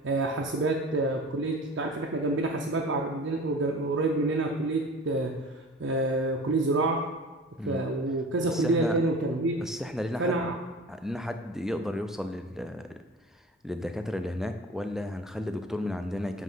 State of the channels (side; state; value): both; normal; correlation 0.39